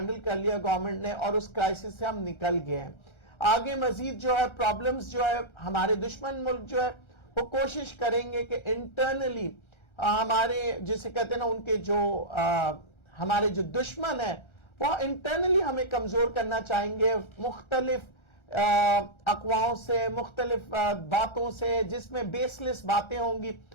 کر لیا گورنمنٹ نے اور اس کرائسس سے ہم نکل گئے ہیں۔ آگے مزید جو ہے پرابلمز جو ہے ہمارے دشمن ملک جو ہے وہ کوشش کریں گے کہ انٹرنلی ہمارے جسے کہتے ہیں نا ان کے جو ہمارے جو دشمن ہیں وہ انٹرنلی ہمیں کمزور کرنا چاہیں گے، مختلف اقواؤں سے، مختلف باتوں سے، جس میں بیس لیس باتیں ہوں گی،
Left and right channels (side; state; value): right; late; 1.3 ms